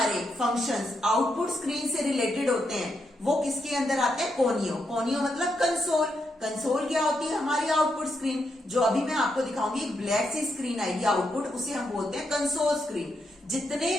फंक्शंस आउटपुट स्क्रीन से रिलेटेड होते हैं वो किसके अंदर आते हैं, कोनियो। कोनियो मतलब कंसोल। कंसोल क्या होती है, हमारी आउटपुट स्क्रीन। जो अभी मैं आपको दिखाऊंगी एक ब्लैक सी स्क्रीन आएगी आउटपुट, उसे हम बोलते हैं कंसोल स्क्रीन। जितने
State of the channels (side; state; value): both; normal; correlation 0.81